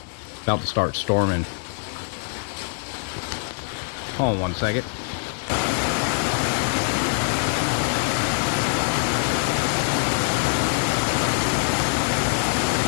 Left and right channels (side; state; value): right; silent; digital silence